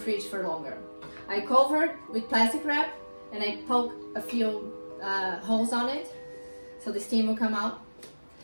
for longer. I covered with plastic wrap and I poke a few holes on it so the steam will come out.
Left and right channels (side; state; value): both; inverted; correlation -1.00